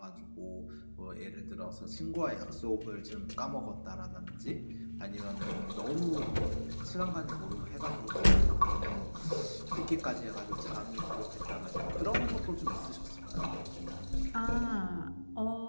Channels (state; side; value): inverted; both; correlation -1.00